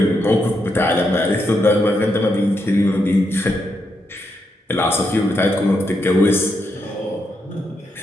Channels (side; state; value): both; normal; correlation 0.81